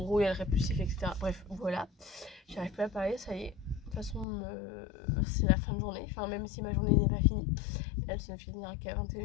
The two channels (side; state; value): right; drops out; at 4.2 s